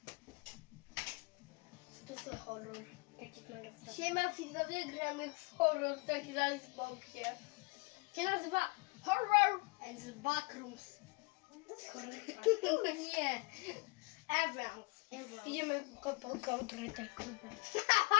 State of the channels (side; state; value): right; quieter; 29.7 dB